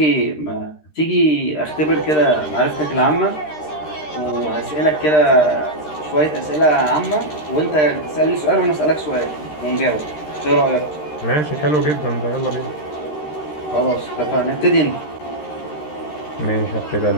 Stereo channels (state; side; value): late; right; 13 ms